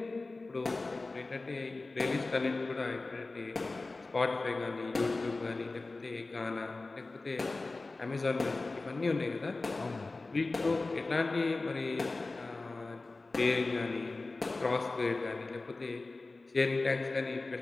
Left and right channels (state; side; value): quieter; right; 3.4 dB